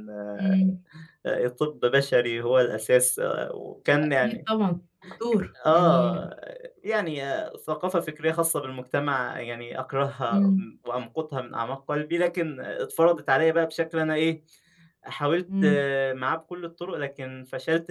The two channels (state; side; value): identical; both; correlation 1.00